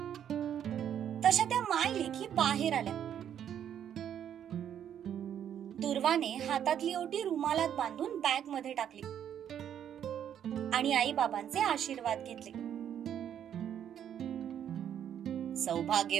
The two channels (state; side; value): quieter; left; 9.5 dB